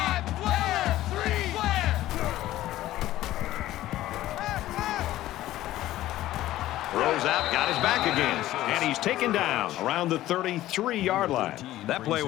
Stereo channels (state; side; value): quieter; right; 14.9 dB